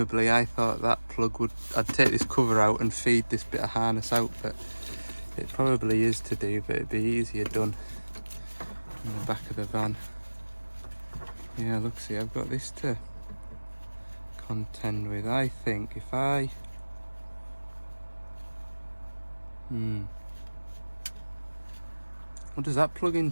I thought that plug would, I'd take this cover out and feed this bit of harness out, but it probably is to do, but it'd be easier done in the back of the van. Yeah, look, see, I've got this to contend with. I think if I... What does that plug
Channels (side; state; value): both; inverted; correlation -1.00